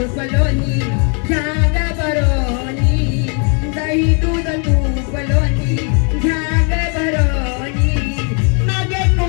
लोणी घ्या ग बरोनी दही दूध तूप लोणी घ्या ग बरोनी मागे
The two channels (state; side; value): quieter; right; 38.9 dB